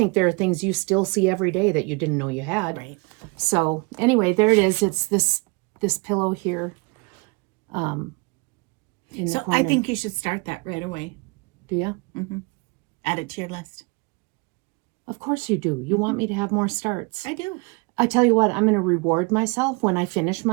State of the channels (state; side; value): quieter; left; 29.6 dB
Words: there are things you still see every day that you didn't know you had. Right. So anyway, there it is. It's this pillow here. In the So corner. I think you should start that right away. Do you? Mm-hmm. Add it to your list. Of course you do. You want me to have more starts. I do. I tell you what, I'm going to reward myself when I finish